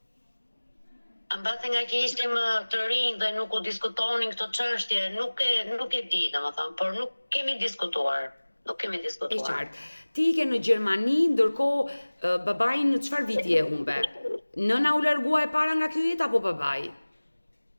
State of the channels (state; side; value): inverted; both; correlation -1.00